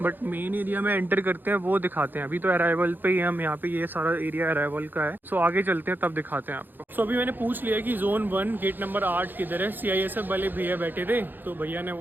बट मेन एरिया में एंटर करते हैं वो दिखाते हैं। अभी तो अराइवल पे ही हम यहाँ पे, ये सारा एरिया अराइवल का है। सो आगे चलते हैं तब दिखाते हैं आपको। सो अभी मैंने पूछ लिया कि जोन 1 गेट नंबर 8 किधर है। CISF वाले भैया बैठे थे, तो भैया ने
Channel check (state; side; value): late; left; 0.090 ms